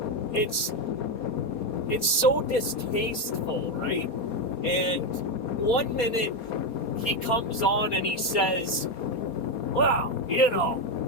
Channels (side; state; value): right; late; 4.3 ms